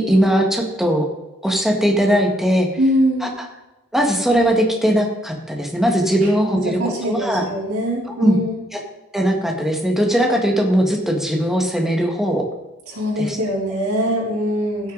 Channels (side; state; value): both; normal; correlation 0.72